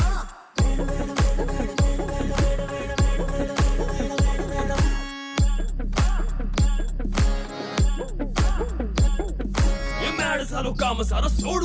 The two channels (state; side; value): identical; both; correlation 1.00